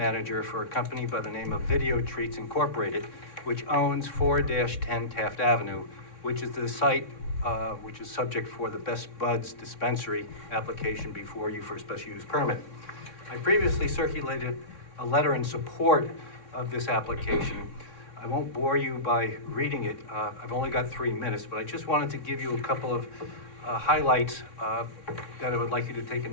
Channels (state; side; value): late; right; 3.6 ms